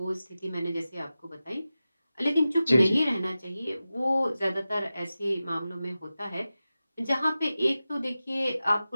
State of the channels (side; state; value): both; inverted; correlation -0.95